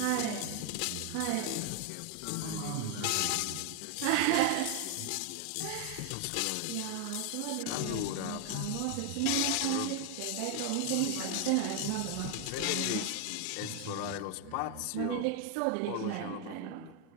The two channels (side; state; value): both; different; correlation 0.00